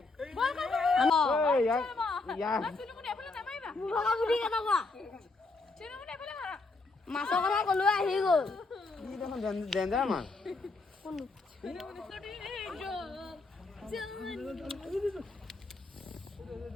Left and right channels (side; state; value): right; quieter; 3.6 dB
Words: মাছৰ কথা কলো আহি গ'ল ডেঞ্জাৰ মাছ